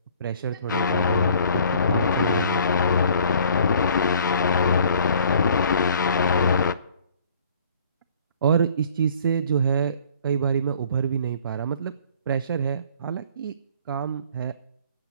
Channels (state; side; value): inverted; both; correlation -0.54